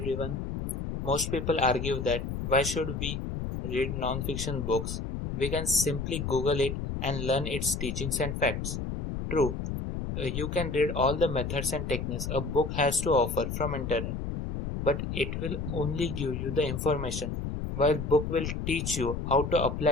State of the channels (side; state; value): left; noise; rumble, 4 dB below the sound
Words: Most people argue that why should we read non-fiction books? We can simply Google it and learn its teachings and facts. True, you can read all the methods and techniques a book has to offer from internet, but it will only give you the information, while book will teach you how to